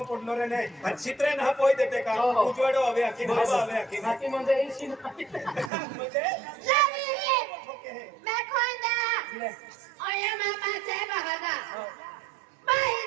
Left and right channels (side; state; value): left; drops out; at 5.7 s